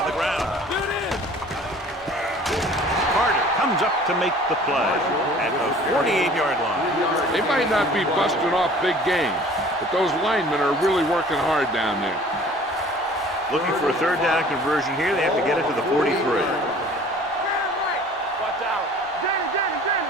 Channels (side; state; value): both; normal; correlation 0.49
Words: the ground. Get it in. Carter comes up to make the play at the 48-yard line. They might not be busting off big games, but those linemen are really working hard down there. Looking for a third down conversion here. They have to get it to the 43. Watch out. Danny.